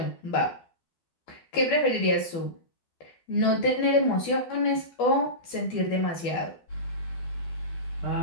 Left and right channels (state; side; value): late; right; 12 ms